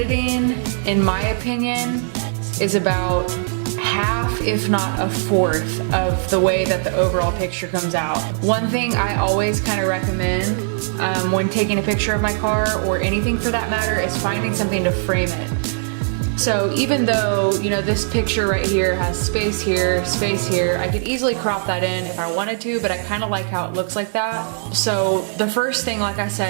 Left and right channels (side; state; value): left; silent; digital silence